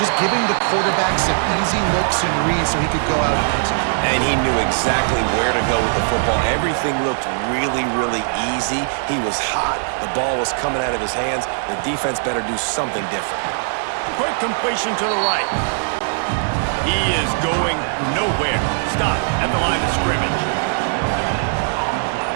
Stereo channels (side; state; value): left; silent; digital silence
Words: giving the quarterback some easy looks and reads so he could go out and execute. And he knew exactly where to go with the football. Everything looked really, really easy. He was hot. The ball was coming out of his hands. The defense better do something different. Quick completion to the right. He is going nowhere. Stop at the line of scrimmage.